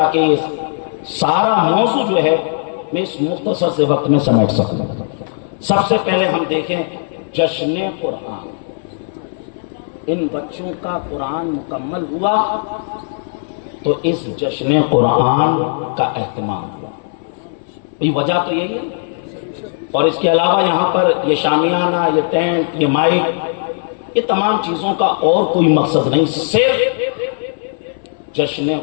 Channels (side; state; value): right; silent; 62 dB below the other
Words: یہ سارا موضوع جو ہے میں اس مختصر سے وقت میں سمیٹ سکوں. سب سے پہلے ہم دیکھیں جشن قرآن. ان بچوں کا قرآن مکمل ہوا تو اس جشن قرآن کا اہتمام ہوا. وجہ تو یہی ہے. اور اس کے علاوہ یہاں پر یہ شامیانہ, یہ ٹینٹ, یہ مائک, یہ تمام چیزوں کا اور کوئی مقصد نہیں, صرف جشن